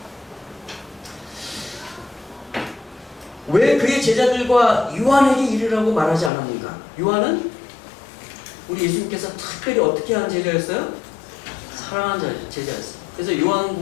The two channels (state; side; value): drops out; right; at 6.3 s